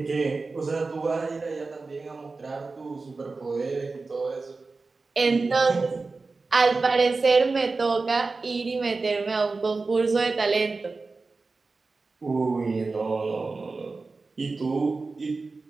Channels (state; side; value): quieter; left; 3.9 dB